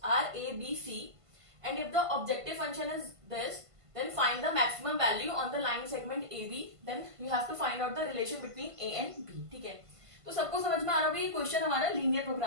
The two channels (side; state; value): left; late; 1.5 ms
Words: are A B C and if the objective function is this, then find the maximum value on the line segment AB. Then you have to find out the relation between A and B. ठीक है, तो सबको समझ में आ रहा होगा ये question हमारा लीनियर